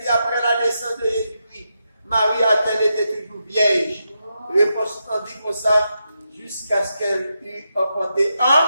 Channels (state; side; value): inverted; both; correlation -0.85